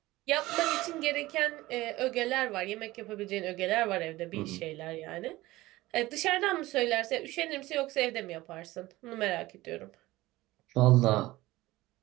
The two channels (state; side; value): quieter; left; 18.3 dB